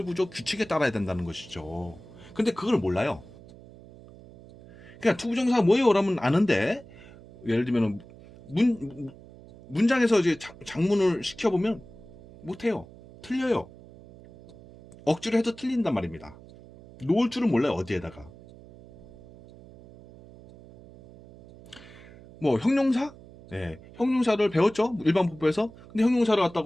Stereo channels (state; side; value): noise; right; hum, 20 dB below the sound